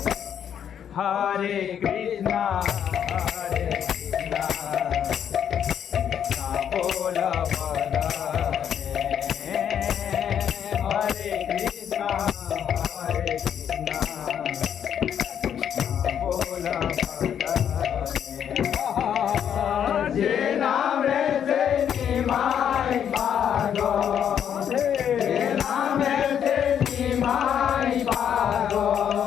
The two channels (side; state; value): right; quieter; 8.9 dB